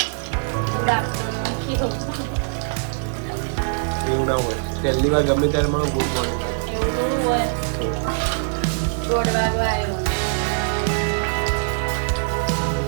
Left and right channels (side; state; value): left; silent; digital silence